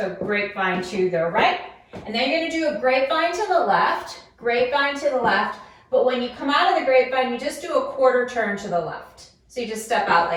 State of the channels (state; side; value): identical; both; correlation 1.00